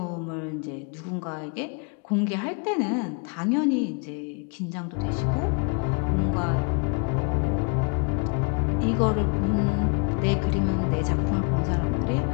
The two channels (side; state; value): right; quieter; 35.5 dB